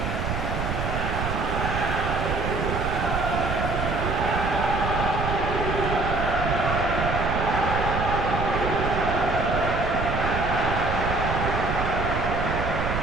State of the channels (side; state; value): right; noise; rumble, 2 dB below the sound